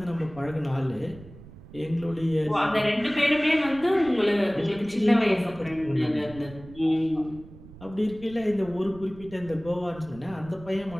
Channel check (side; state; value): right; noise; rumble, 18 dB below the sound